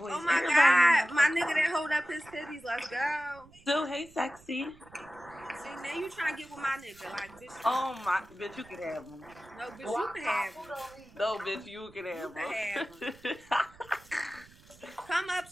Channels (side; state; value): right; noise; rumble, 25 dB below the sound